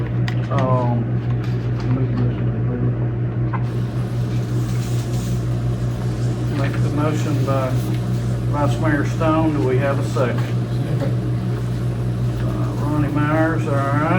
Make the motion by Vice Mayor Stone. Do we have a second? Ronnie Myers, all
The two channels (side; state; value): both; identical; correlation 1.00